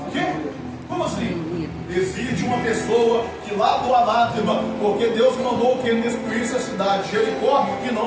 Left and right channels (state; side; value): identical; both; correlation 1.00